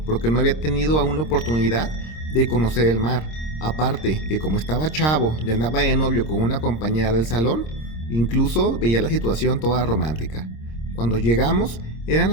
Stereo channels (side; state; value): right; late; 26 ms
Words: porque no había tenido aún la oportunidad de conocer el mar. Aparte que como estaba chavo y andaba de novio con una compañera del salón, incluso veía la situación toda romántica. Cuando llegamos eran